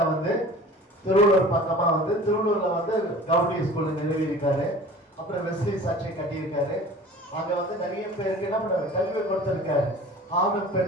வந்து திருவள்ளூர் பக்கமா வந்து திருவள்ளூர்ல வந்து கவுடி ஸ்கூல் நிறுவி இருக்காரு. அப்புறம் வெஸ்லி சர்ச்சை கட்டியிருக்காரு. அங்க வந்து நிறைய பேருக்கு என்ன பண்ணாரு, கல்வி கொடுத்திருக்காரு. ஆணும்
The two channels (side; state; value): both; normal; correlation 0.43